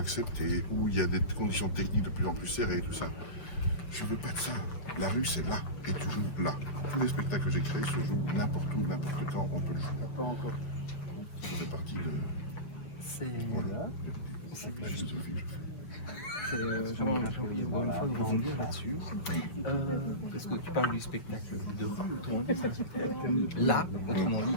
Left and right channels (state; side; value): late; right; 7.2 ms